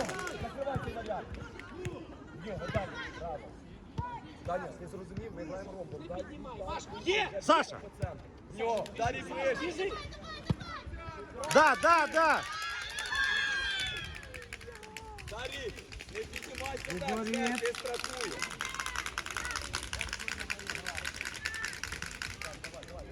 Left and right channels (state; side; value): identical; both; correlation 1.00